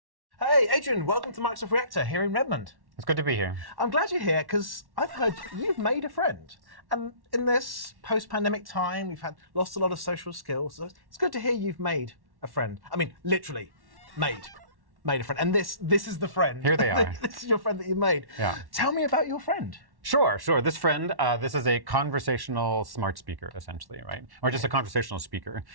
Hey, Adrian, welcome to Microsoft Reactor here in Redmond. It's good to be here. I'm glad you're here because I've heard you've made a friend. And in this post-pandemic time, we've lost a lot of social skills. So it's good to hear you've made a friend. I mean, literally, made a friend. And this is the friend. Here they are. This is your friend that you made. Yeah. Tell me about your friend. Sure. This friend, this is a conversational smart speaker, essentially, right? Or just a conversational speaker.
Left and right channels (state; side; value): late; left; 1.1 ms